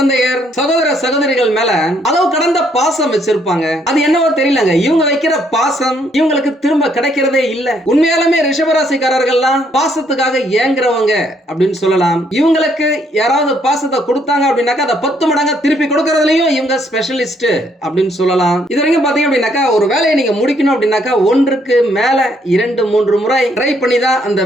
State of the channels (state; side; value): normal; both; correlation 0.69